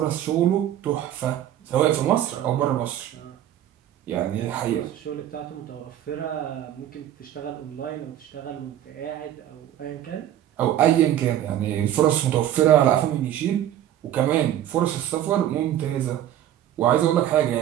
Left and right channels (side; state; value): left; quieter; 11.7 dB